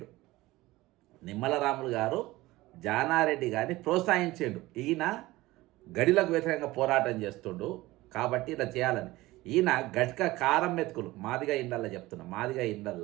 నిమ్మల రాములు గారు జానారెడ్డి గారిని ప్రోత్సహించాడు. ఈయన గడిలకు వ్యతిరేకంగా పోరాటం చేస్తుండు కాబట్టి ఇలా చేయాలని. ఈయన గట్క కారం మెతుకులు, మాదిగా ఇండల్లా చెప్తున్నా, మాదిగా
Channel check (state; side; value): quieter; left; 18.8 dB